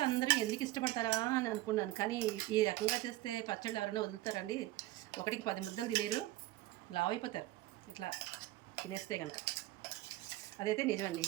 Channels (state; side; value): quieter; left; 16.9 dB